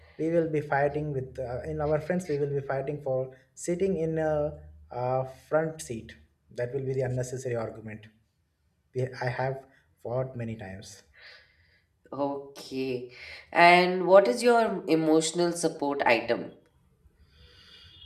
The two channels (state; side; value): identical; both; correlation 1.00